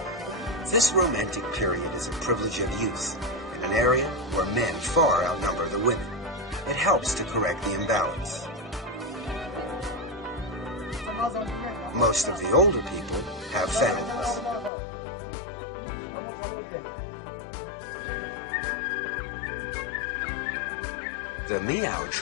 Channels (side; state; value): right; drops out; at 14.7 s